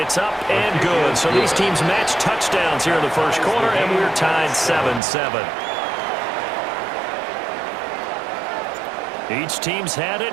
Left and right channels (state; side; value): drops out; left; at 5.0 s